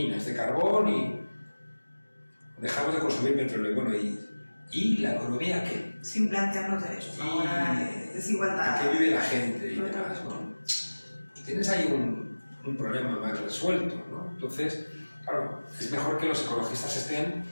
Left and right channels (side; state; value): both; inverted; correlation -1.00